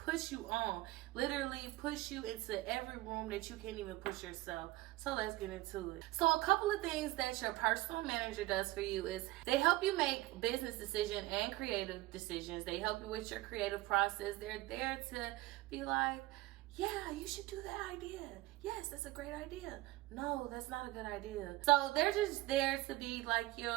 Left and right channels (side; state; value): left; quieter; 18.9 dB